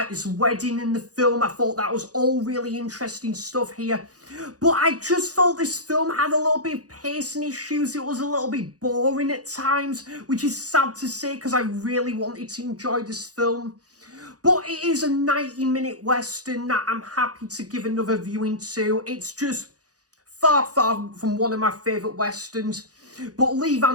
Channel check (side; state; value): left; late; 0.67 ms